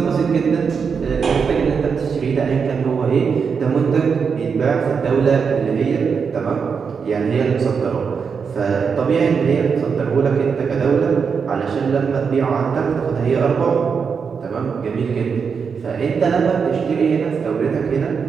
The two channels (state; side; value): quieter; left; 6.0 dB